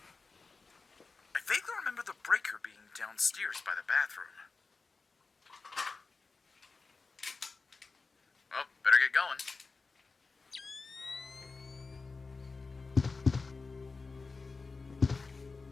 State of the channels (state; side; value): quieter; right; 4.2 dB